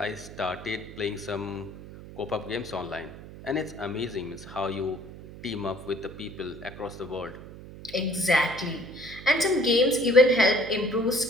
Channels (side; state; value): right; noise; hum, 15 dB below the sound